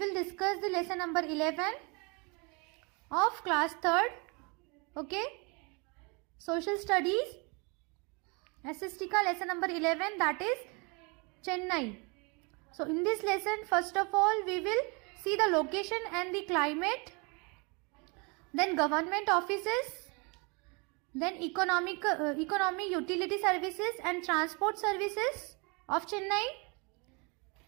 discuss the lesson number 11 of class 3rd, okay, social studies, SST ka lesson number 11, that is Chennai. So in this lesson first of all we will see the location and the climate, then government offices, then economy, utility services and transport services of Chennai,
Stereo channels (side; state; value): left; quieter; 31.1 dB